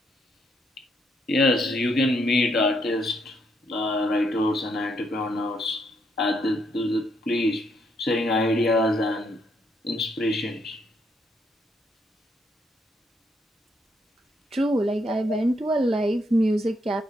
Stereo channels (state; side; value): normal; both; correlation 0.74